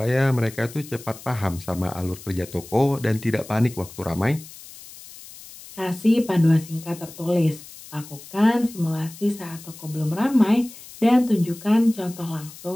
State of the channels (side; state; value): left; noise; hiss, 17 dB below the sound